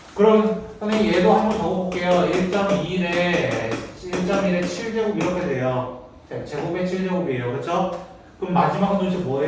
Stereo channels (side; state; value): both; identical; correlation 1.00